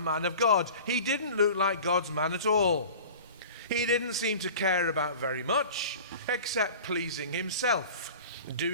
of God. He didn't look like God's man at all. He didn't seem to care about very much except pleasing himself,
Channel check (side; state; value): both; inverted; correlation -0.39